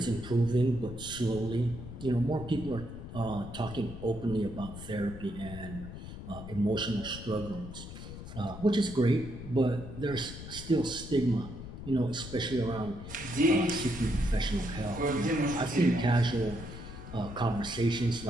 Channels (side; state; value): left; noise; rumble, 11 dB below the sound